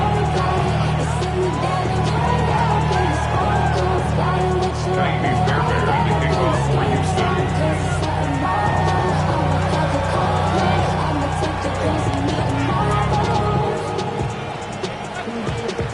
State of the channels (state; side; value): identical; both; correlation 1.00